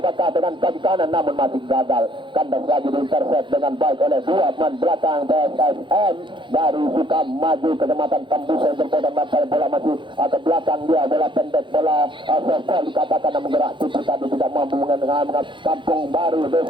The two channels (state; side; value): late; left; 0.23 ms